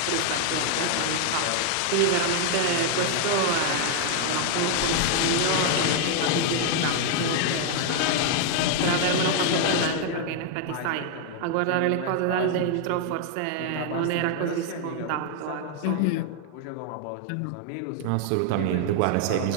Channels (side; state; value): both; different; correlation 0.00